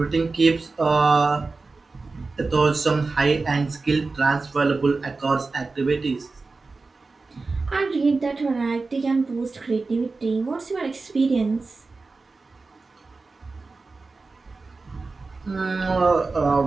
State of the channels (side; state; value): left; quieter; 3.9 dB